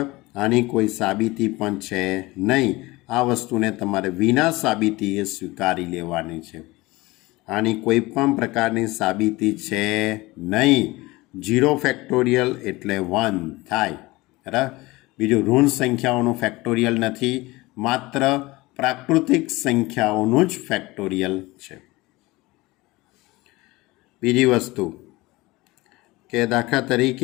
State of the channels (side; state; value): right; quieter; 21.2 dB